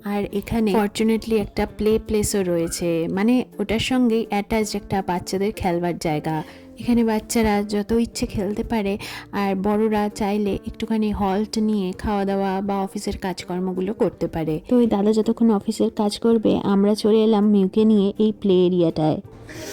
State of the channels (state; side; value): identical; both; correlation 1.00